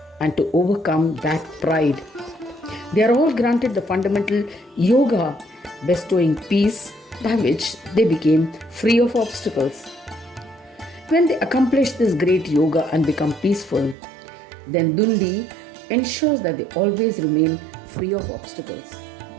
and to overcome that pride. They are all granted the fundamental yoga bestowing peace by which they became free of obstacles. When they accomplish this great yoga and become peaceful, then Dundi ensures that they always remain free of obstacles.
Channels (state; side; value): drops out; left; at 14.0 s